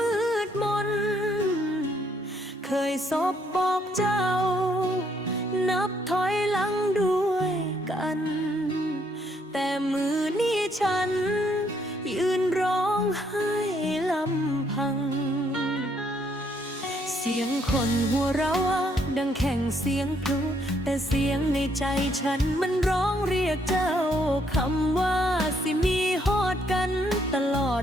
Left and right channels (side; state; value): both; normal; correlation 0.70